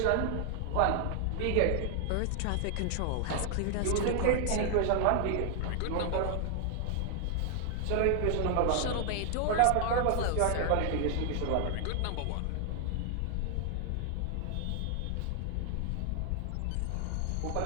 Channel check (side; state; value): both; different; correlation 0.00